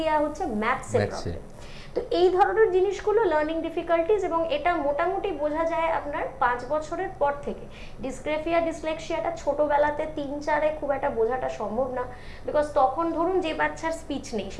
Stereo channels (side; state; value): both; identical; correlation 1.00